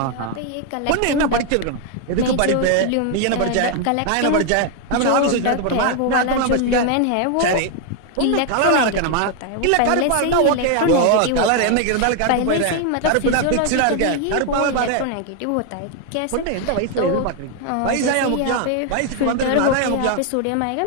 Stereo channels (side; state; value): both; different; correlation 0.00